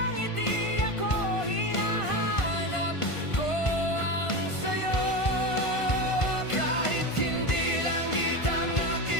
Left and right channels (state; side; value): late; right; 1.5 ms